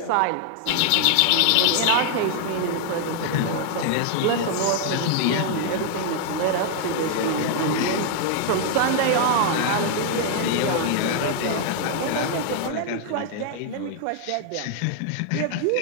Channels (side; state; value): both; different; correlation 0.00